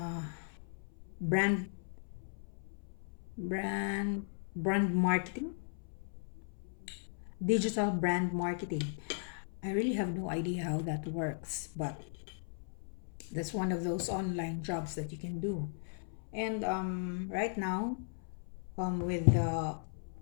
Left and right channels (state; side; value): silent; right; 53 dB below the other